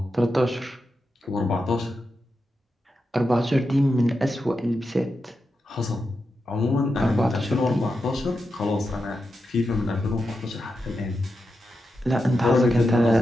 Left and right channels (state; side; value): normal; both; correlation 0.88